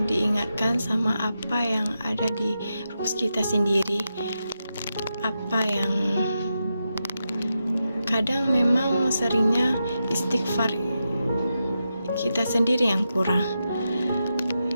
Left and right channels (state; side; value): inverted; both; correlation -0.88